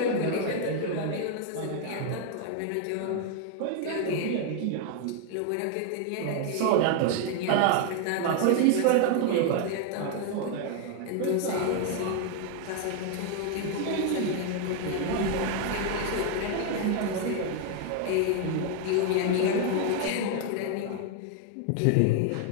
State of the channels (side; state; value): both; different; correlation 0.01